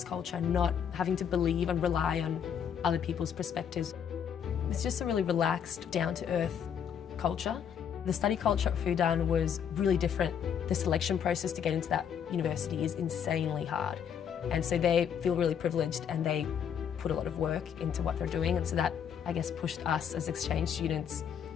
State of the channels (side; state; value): right; quieter; 8.1 dB